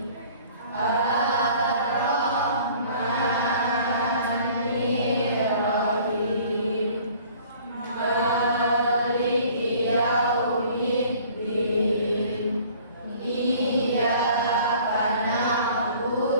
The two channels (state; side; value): inverted; both; correlation -0.52